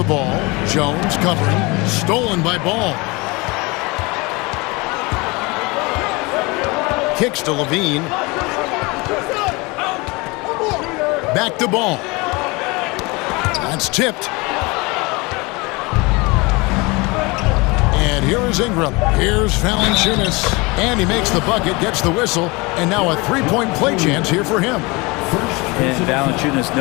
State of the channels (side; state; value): right; quieter; 25.6 dB